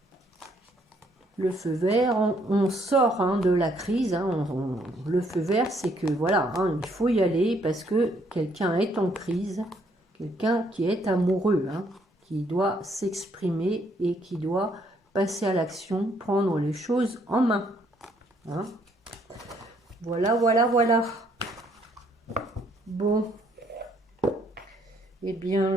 Le feu vert, on sort, hein, de la crise. Hein, le feu vert, c'est que voilà, hein, il faut y aller parce que quelqu'un est en crise. Quelqu'un qui est amoureux. Hein, qui doit s'exprimer et qui doit passer à l'action, prendre les choses en main. Hein. Voilà, voilà, voilà. Bon. Eh bien,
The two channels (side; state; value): both; normal; correlation 0.68